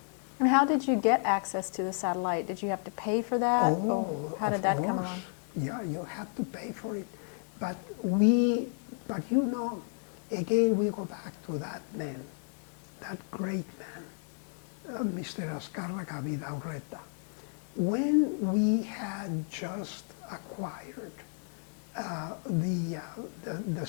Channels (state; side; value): silent; right; 56 dB below the other